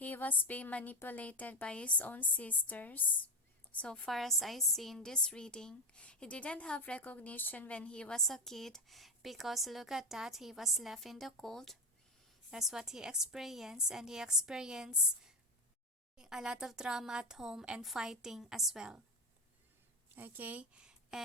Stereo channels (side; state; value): both; normal; correlation 0.17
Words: was being manipulated by his own sisters. So far as I see in this reading, he didn't have recognition when he was a kid, because look at that, he was left in the cold. That's what he experienced, and he experienced a lot of drama at home and fighting as well. Okay,